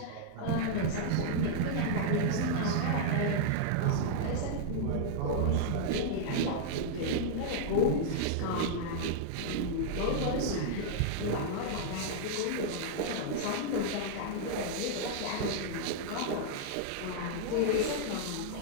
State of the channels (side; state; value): both; different; correlation -0.01